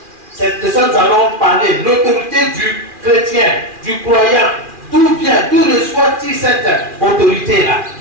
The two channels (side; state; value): left; late; 2.4 ms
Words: C'est de ça que nous allons parler. L'autorité du chrétien, du croyant. D'où vient, d'où reçoit-il cette autorité-là?